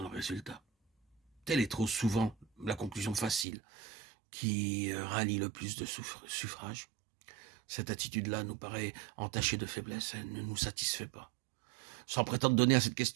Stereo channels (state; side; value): drops out; left; at 3.5 s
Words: le résultat. Telle est trop souvent la conclusion facile qui rallie le plus de suffrages. Cette attitude-là nous paraît entachée de faiblesse, elle ne nous satisfait pas. Sans prétendre donner à cette